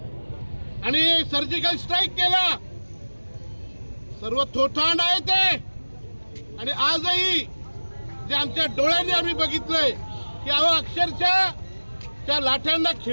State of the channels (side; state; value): both; inverted; correlation -1.00